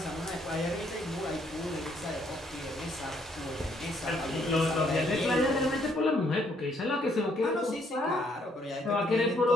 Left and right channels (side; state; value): both; normal; correlation 0.69